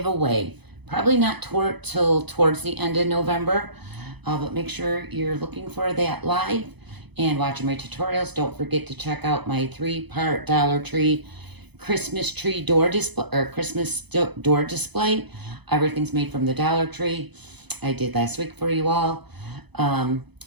Probably not till towards the end of November, but make sure you're looking for that live and watching my tutorials. Don't forget to check out my 3-part Dollar Tree Christmas tree door display, or Christmas door display. Everything's made from the Dollar Tree. I did last week for you all. And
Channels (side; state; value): left; late; 0.99 ms